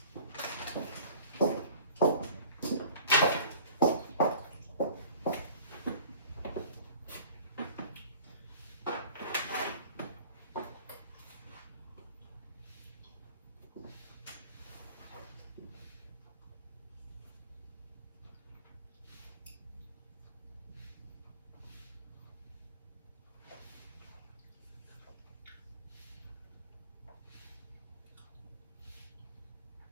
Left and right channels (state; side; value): inverted; both; correlation -0.47